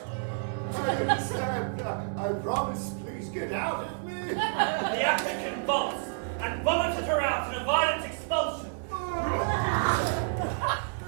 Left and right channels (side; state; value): left; silent; digital silence